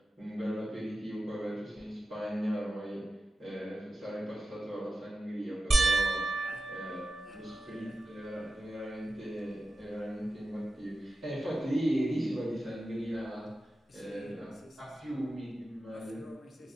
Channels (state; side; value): normal; both; correlation 0.93